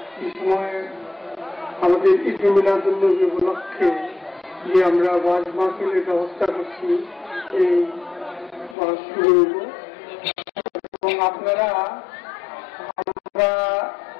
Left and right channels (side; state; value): right; drops out; at 8.8 s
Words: এই সময় আমাদের ঈদ মিলাদুন্নবী উপলক্ষে যে আমরা ওয়াজ মাহফিলের ব্যবস্থা করছি, এই ওয়াজ শুরু হইব এবং আপনারা আমরা